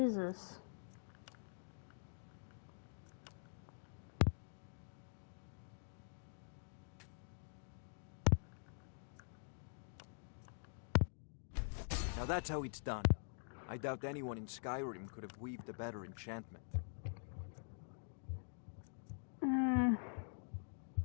Now that's how it's done. I doubt anyone in Skyrim could have weaved a better enchantment.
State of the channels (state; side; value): silent; right; digital silence